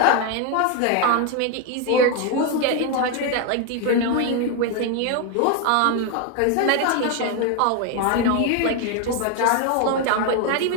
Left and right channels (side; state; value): both; different; correlation 0.01